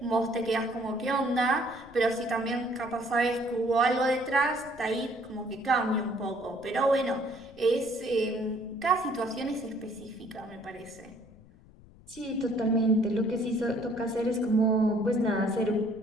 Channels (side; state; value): left; noise; rumble, 23 dB below the sound